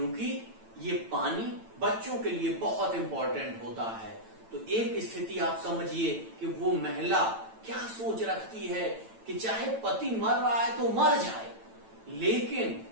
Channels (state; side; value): late; left; 9.0 ms